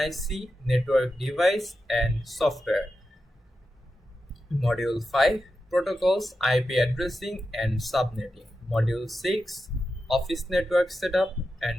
Network Device and Software. Module 5, Protocols, IP Addressing and Subnetting. Module 6, Office Network Setup.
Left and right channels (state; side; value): normal; both; correlation 0.90